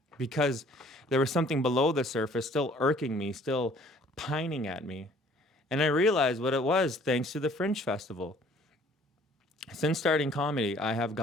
Because there was something below the surface still irking me, still pining at me. And I realized what it was thanks to the Fringe Festival. Since starting comedy, I have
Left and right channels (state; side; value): normal; both; correlation 0.56